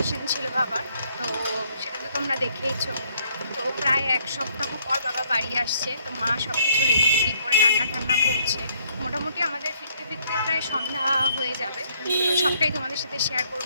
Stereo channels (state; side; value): inverted; both; correlation -0.66